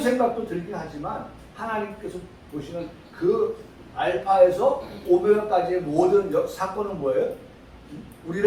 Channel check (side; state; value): both; identical; correlation 1.00